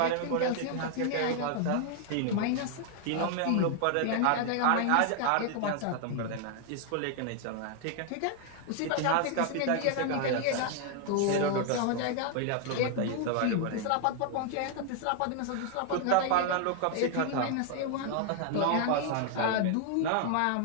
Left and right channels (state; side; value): different; both; correlation 0.00